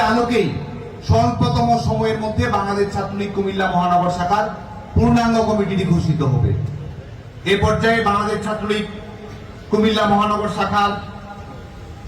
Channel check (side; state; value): both; identical; correlation 1.00